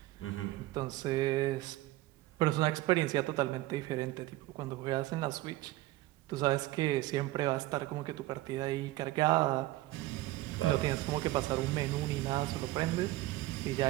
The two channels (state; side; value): quieter; left; 17.4 dB